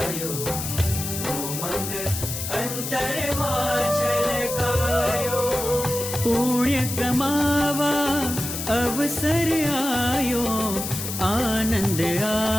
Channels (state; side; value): noise; left; hiss, 5 dB below the sound